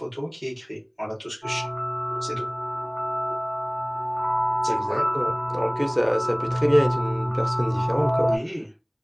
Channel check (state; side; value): identical; both; correlation 1.00